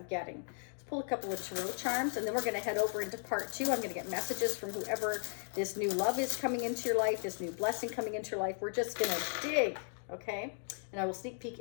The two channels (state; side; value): silent; right; 54 dB below the other